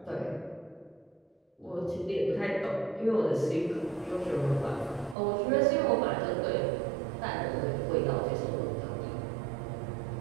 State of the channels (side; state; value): left; drops out; at 5.2 s